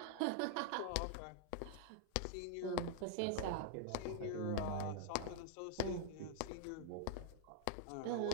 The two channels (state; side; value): different; both; correlation -0.01